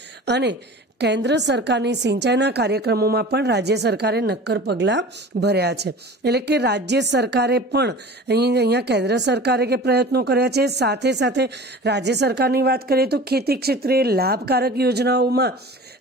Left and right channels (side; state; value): both; normal; correlation 0.39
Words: અને કેન્દ્ર સરકારની સિંચાઈના કાર્યક્રમોમાં પણ રાજ્ય સરકારે નક્કર પગલાં ભર્યા છે. એટલે કે રાજ્ય સરકારે પણ અહીંયા કેન્દ્ર સરકારે કે પ્રયત્નો કર્યા છે. સાથે સાથે રાજ્ય સરકારની વાત કરીએ તો ખેતી ક્ષેત્રે લાભકારક યોજનાઓમાં